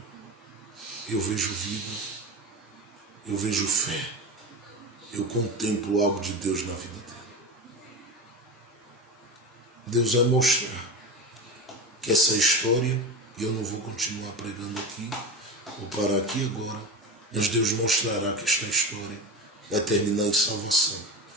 eu vejo vida, eu vejo fé, eu contemplo algo de Deus na vida dele. Deus vai mostrar que essa história, e eu não vou continuar pregando aqui, vou parar aqui agora, mas Deus mostrará que esta história vai terminar em salvação.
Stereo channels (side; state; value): both; normal; correlation 0.25